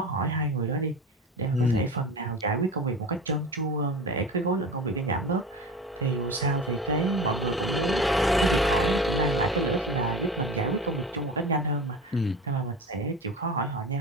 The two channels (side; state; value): both; normal; correlation 0.32